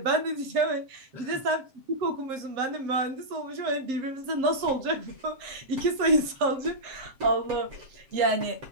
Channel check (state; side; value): late; left; 7.6 ms